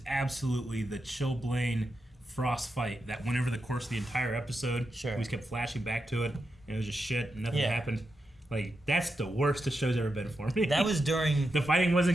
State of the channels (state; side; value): normal; both; correlation 0.87